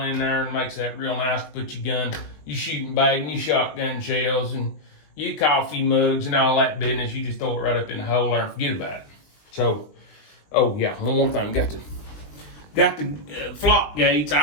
in there and makes that real nice to put your gun, your shooting bag and your shotgun shells and your coffee mugs and all that business. You just throw it right up in the hole there and forget about it. So, oh yeah, one more thing. Got the flock gates.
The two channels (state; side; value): late; right; 20 ms